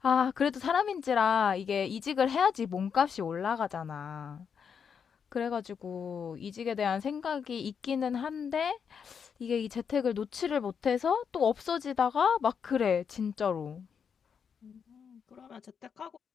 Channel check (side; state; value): right; quieter; 6.9 dB